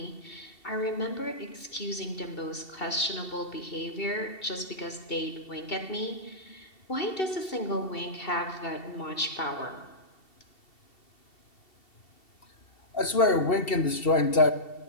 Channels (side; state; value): right; late; 2.7 ms